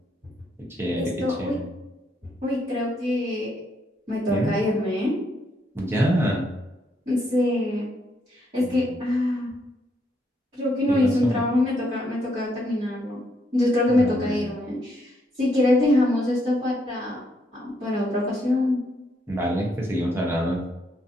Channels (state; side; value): normal; both; correlation 0.75